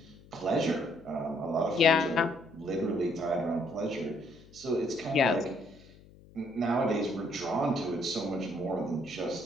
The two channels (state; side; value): noise; left; hum, 23 dB below the sound